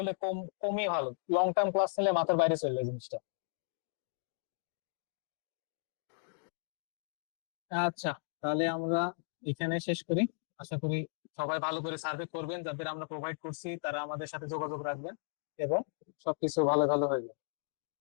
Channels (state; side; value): silent; right; digital silence